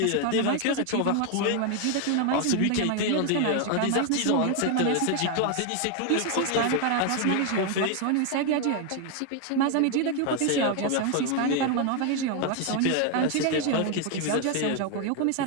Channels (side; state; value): both; different; correlation 0.01